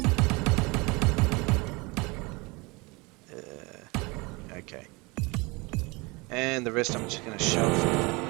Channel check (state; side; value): quieter; left; 26.0 dB